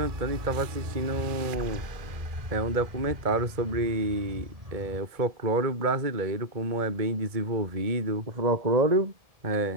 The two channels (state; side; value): late; left; 1.7 ms